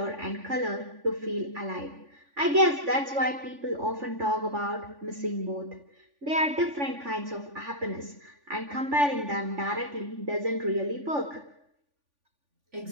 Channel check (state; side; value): late; left; 3.5 ms